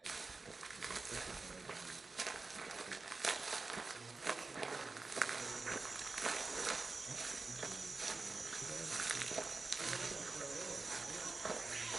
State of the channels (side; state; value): left; quieter; 3.8 dB